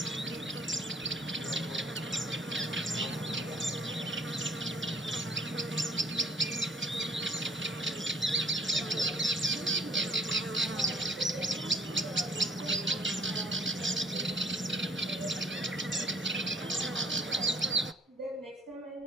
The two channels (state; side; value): normal; both; correlation 0.56